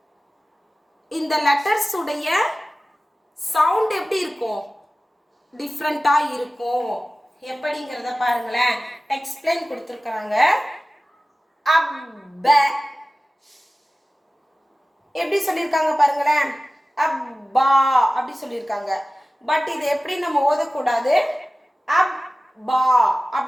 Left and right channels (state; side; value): normal; both; correlation 0.96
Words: இந்த லெட்டர்ஸ் உடைய சவுண்ட் எப்படி இருக்கும், டிஃப்ரெண்டா இருக்கும். எப்படிங்கிறத பாருங்களேன், எக்ஸ்பிளைன் கொடுத்துருக்காங்க. அப்ப எப்படி சொல்லியிருக்காங்க பாருங்களேன், அப்பா அப்படி சொல்லியிருக்காங்க. பட் இது எப்படி நம்ம ஓதக்கூடாது, அப்பா